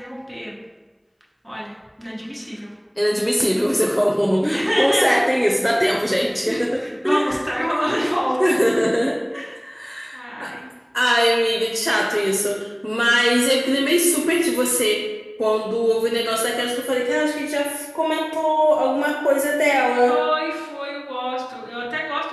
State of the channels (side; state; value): both; identical; correlation 1.00